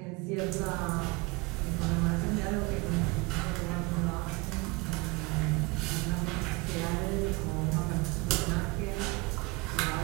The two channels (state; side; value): quieter; left; 26.0 dB